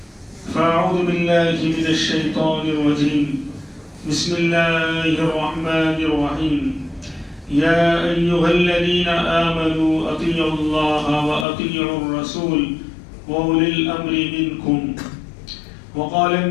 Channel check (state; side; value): drops out; right; at 11.5 s